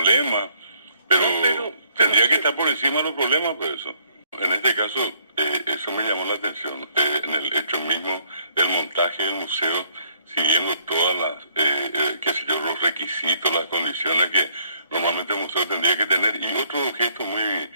pero tendría que estar por encima de los problemas, por eso. En este caso, eso me llamó la atención, en el hecho mismo del montaje del museo, siguiendo todas las, qué sé yo, los requisitos, las condiciones que normalmente el museo tendría que tener. Y otro gesto muy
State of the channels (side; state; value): both; inverted; correlation -0.65